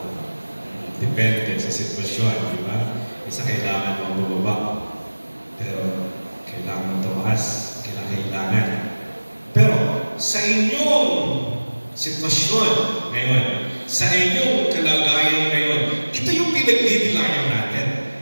Depende sa sitwasyon, di ba? Isa kailangan mong bumaba. Pero kailangan tumaas, kailangan. Pero sa inyong sitwasyon ngayon, sa inyong kalagayan ngayon, ito yung pinagdidilayan natin.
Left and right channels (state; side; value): inverted; both; correlation -1.00